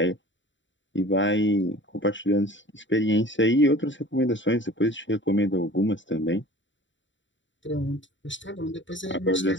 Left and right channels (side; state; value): right; late; 0.54 ms